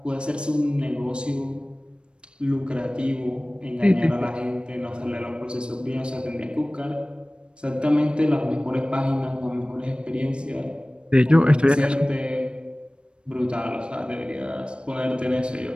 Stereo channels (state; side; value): late; left; 0.055 ms